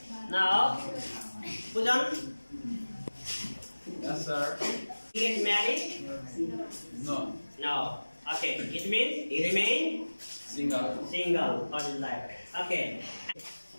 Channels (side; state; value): both; inverted; correlation -1.00